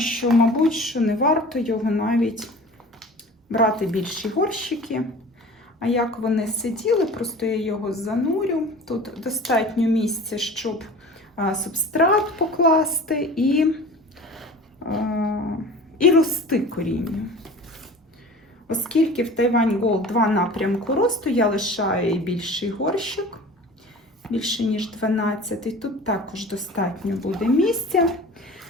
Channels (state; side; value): normal; both; correlation 0.40